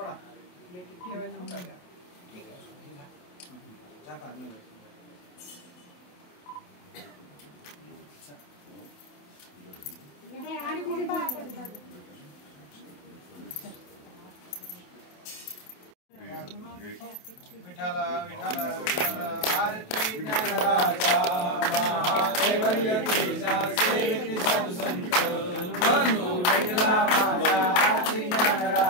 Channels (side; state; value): right; late; 28 ms